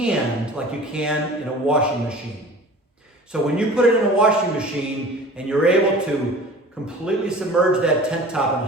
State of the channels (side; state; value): both; normal; correlation 0.42